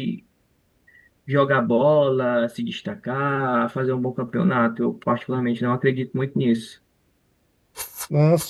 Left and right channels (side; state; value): both; identical; correlation 1.00